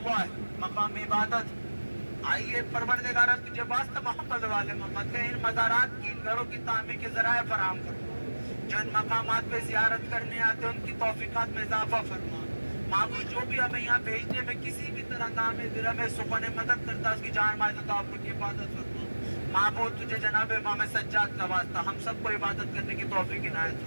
ہے, مقام عبادت. آئیے پروردگار تجھے واسطہ محمد والے محمد کے ان مزارات کی, ان گھروں کی تعمیر کے ذرائع فراہم کرو. جو ان مقامات پہ زیارت کرنے آتے ہیں ان کی توفیقات میں اضافہ فرما. معبود جو بھی ہمیں یہاں بھیجنے میں کسی بھی طرح نام درم سکون مدد کرتا ہے اس کی جان مال عطا کی حفاظت فرما. معبود تجھے جناب امام سجاد کا واسطہ ہم سب کو عبادت کرنے کی توفیق عنایت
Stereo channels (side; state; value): both; inverted; correlation -1.00